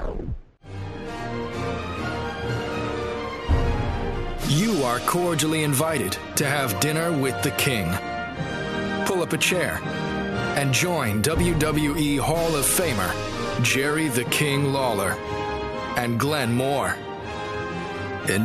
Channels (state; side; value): identical; both; correlation 1.00